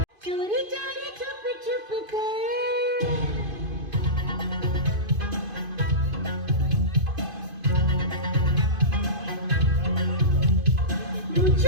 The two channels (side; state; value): left; late; 2.5 ms